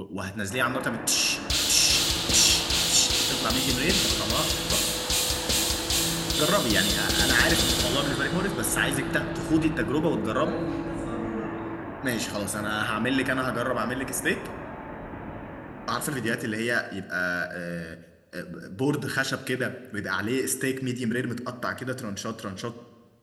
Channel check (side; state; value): both; identical; correlation 1.00